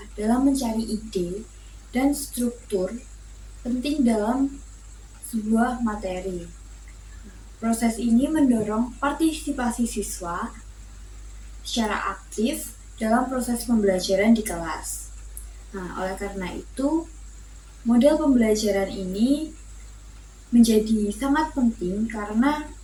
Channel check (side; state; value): both; identical; correlation 1.00